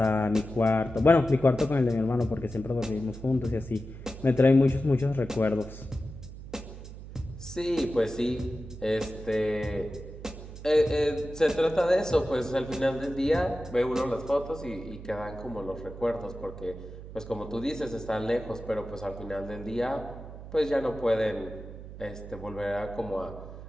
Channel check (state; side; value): noise; right; hum, 13 dB below the sound